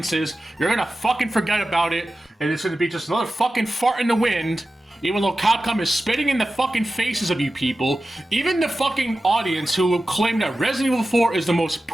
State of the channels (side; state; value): both; normal; correlation 0.94